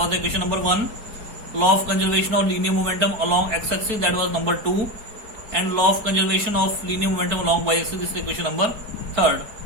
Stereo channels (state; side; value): late; left; 4.7 ms